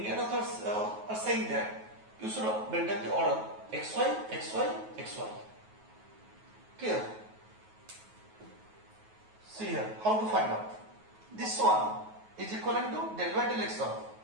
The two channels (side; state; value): left; late; 9.3 ms